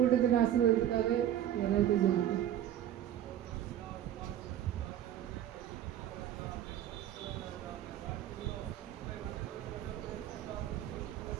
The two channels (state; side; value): quieter; left; 11.4 dB